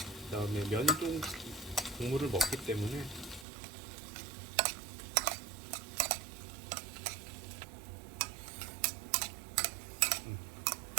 그다음에 면이 좀 국물을 먹기 때문에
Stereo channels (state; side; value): drops out; left; at 3.5 s